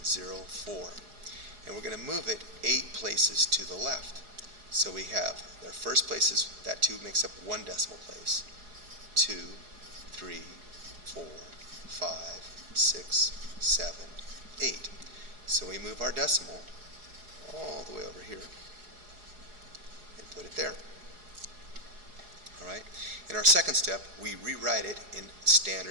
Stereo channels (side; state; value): left; late; 4.8 ms